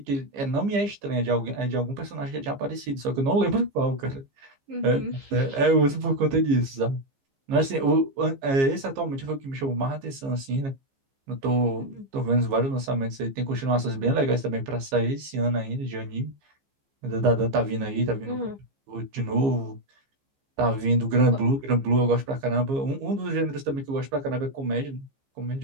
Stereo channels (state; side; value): late; left; 15 ms